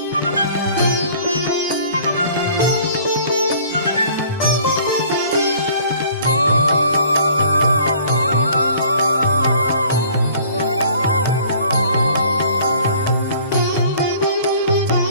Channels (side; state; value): both; inverted; correlation -0.53